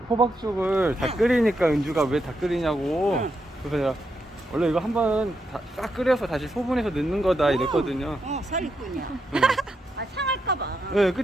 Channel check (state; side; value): normal; both; correlation 0.82